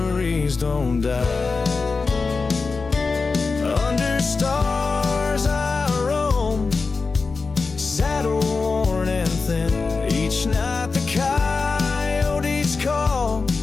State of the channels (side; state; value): right; quieter; 4.3 dB